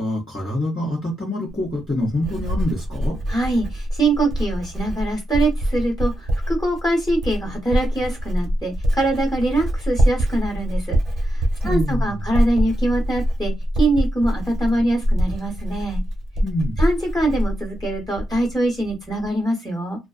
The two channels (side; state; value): both; normal; correlation 0.86